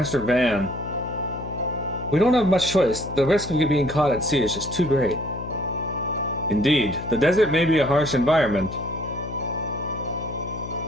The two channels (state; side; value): noise; left; hum, 10 dB below the sound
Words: Van. We don't have much choice. The risk of being caught at sea is just too great. Indeed, the desert may be a harsh environment,